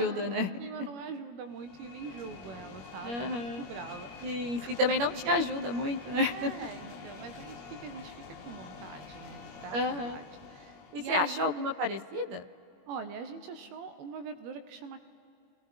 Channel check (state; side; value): late; left; 21 ms